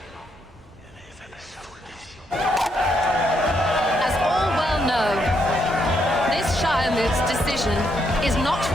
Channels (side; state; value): both; normal; correlation 0.76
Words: As all well know, this Shiremoot's decision is not